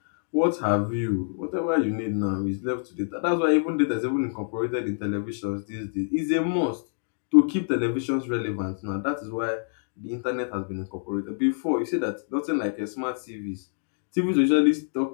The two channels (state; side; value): silent; right; digital silence